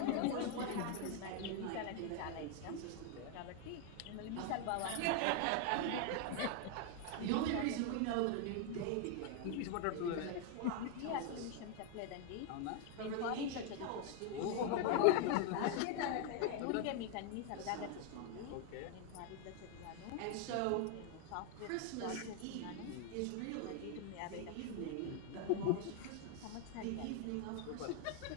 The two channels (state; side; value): different; both; correlation 0.00